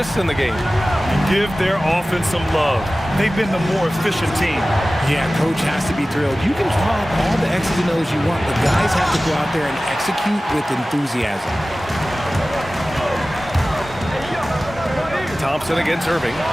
in the game. Give their offense some love. They've been the more efficient team. Yeah, coach has to be thrilled. You can draw up all the X's and O's you want, but guys have to go out there and execute with enthusiasm. Thompson against Irving.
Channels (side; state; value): both; normal; correlation 0.97